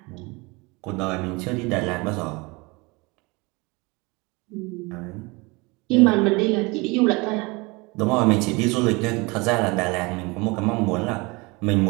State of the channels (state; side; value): quieter; left; 26.0 dB